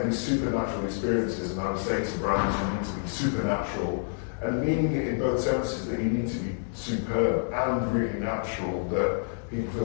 these supernatural experiences, and I would say to brands, you need to be supernatural, and meaning it in both senses, that you need to be superb and really natural, that people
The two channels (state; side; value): silent; right; 59 dB below the other